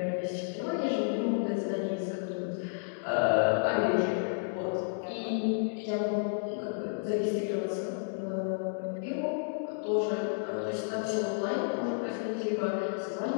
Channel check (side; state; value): right; silent; digital silence